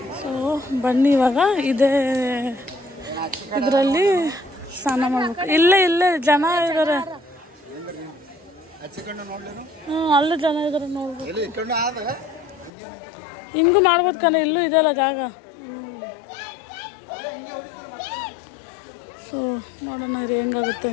ಸೊ ಬನ್ನಿ ಇವಾಗ ಇದರಲ್ಲಿ ಸ್ನಾನ ಮಾಡ್ಬೇಕು. ಇಲ್ಲೇ ಜನ ಇದ್ದಾರೆ. ಅಲ್ಲೂ ಜನ ಇದ್ದಾರೆ ನೋಡ್ಬೇಕು. ಹಿಂಗೂ ಮಾಡ್ಬೋದು ಕಣ, ಇಲ್ಲೂ ಇದೆಯಲ್ಲ ಜಾಗ. ಸೊ ನೋಡೋಣ ರೀ ಹೆಂಗಾಗುತ್ತೆ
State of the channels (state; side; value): drops out; right; at 12.7 s